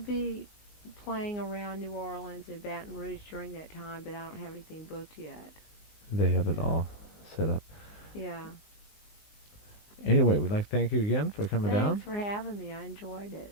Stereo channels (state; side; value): late; right; 19 ms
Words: playing around New Orleans and Baton Rouge during that time, but I don't have anything booked yet. They have it all set up. Yeah. Anyway, we'd like to thank you again for coming down. Thanks for having me. I enjoyed